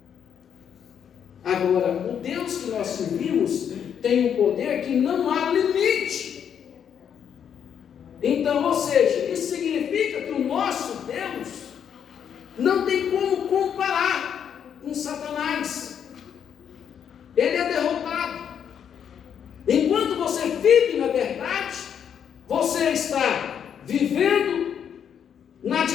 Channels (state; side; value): quieter; right; 8.3 dB